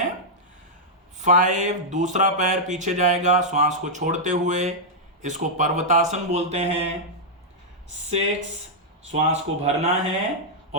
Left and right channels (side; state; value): both; normal; correlation -0.06